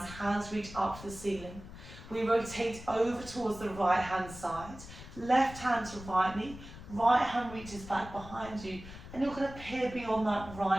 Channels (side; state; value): left; noise; rumble, 14 dB below the sound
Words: Hands reach up to the ceiling. We rotate over towards the right hand side. Left hand to right knee, right hand reaches back behind you, and you're going to peer beyond that